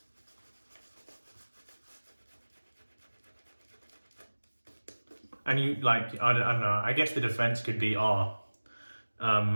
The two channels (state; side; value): inverted; both; correlation -1.00